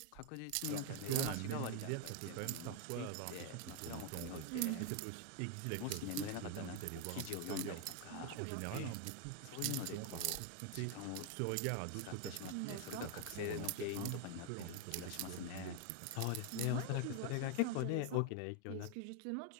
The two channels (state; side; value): different; both; correlation 0.01